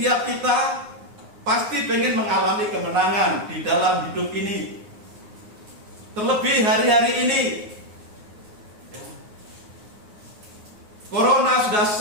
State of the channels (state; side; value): late; left; 9.6 ms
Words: kita pasti pengen mengalami kemenangan di dalam hidup ini. Terlebih hari-hari ini, Corona sudah